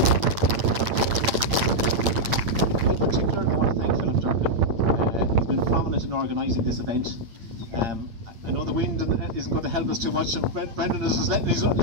In particular, I want to thank Philip Durkin. He's been prominent in organising this event. I know the wind isn't going to help us too much, and Brendan is just letting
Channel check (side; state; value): left; late; 8.8 ms